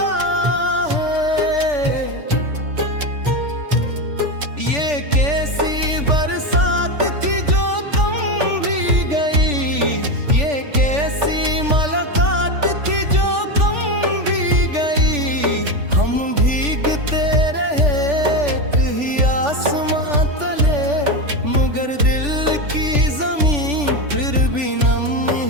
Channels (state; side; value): late; left; 3.4 ms